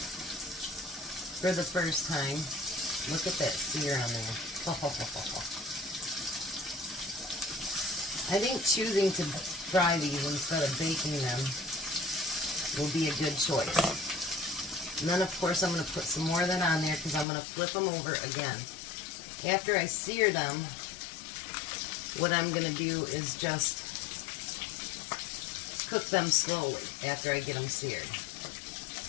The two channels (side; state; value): right; drops out; at 17.2 s